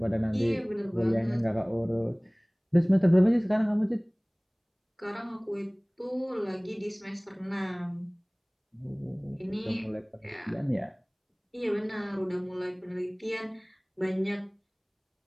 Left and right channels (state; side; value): identical; both; correlation 1.00